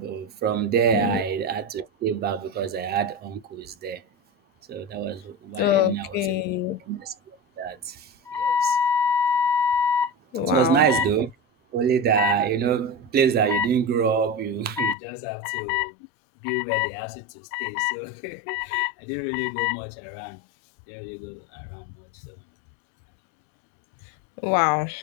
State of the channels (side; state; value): right; drops out; at 15.0 s